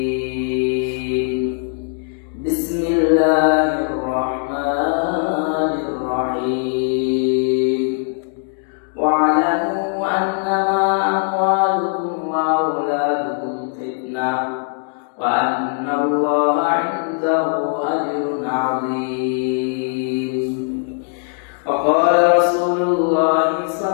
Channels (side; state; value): right; silent; 56 dB below the other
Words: Bismillahirrahmanirrahim. Wa'lamu annama amwalukum wa auladukum fitnah wa anna Allaha 'indahu ajrun 'azim. Wa qala Rasulullah